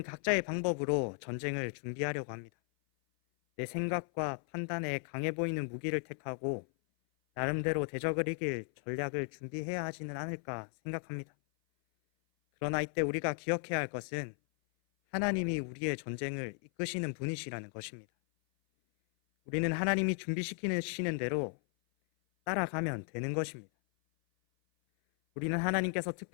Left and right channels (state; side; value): silent; right; 54 dB below the other